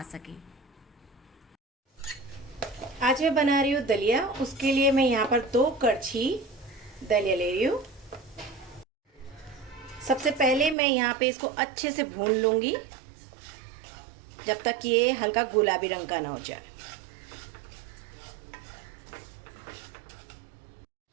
सके। आज मैं बना रही हूँ दलिया। उसके लिए मैं यहाँ पर 2 कड़छी दलिया ले रही हूँ। सबसे पहले मैं यहाँ पे इसको अच्छे से भून लूँगी जब तक ये हल्का गुलाबी रंग का ना हो जाए।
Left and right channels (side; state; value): left; drops out; at 10.8 s